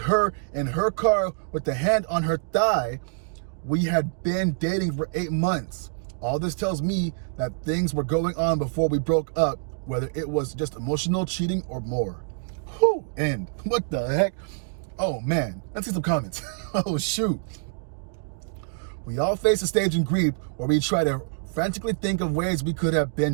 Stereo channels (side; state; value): left; silent; digital silence